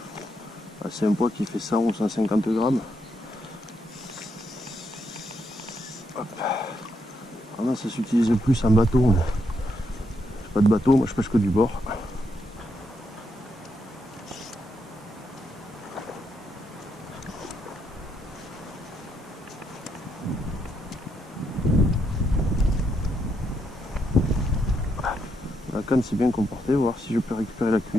C'est un poids qui fait 100 ou 150 grammes. Hop. Alors là, ça s'utilise plus en bateau. J'ai pas de bateau, moi je pêche que du bord. La canne s'est bien comportée, voir si je peux récupérer la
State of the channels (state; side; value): normal; both; correlation 0.79